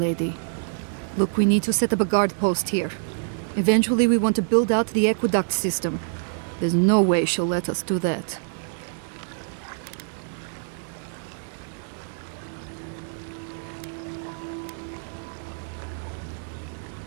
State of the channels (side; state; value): left; silent; 56 dB below the other